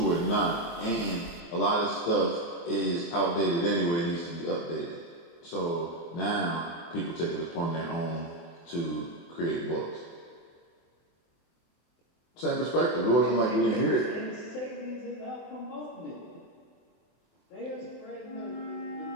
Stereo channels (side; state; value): right; late; 24 ms